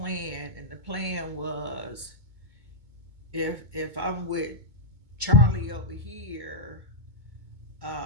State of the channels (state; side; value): late; left; 2.2 ms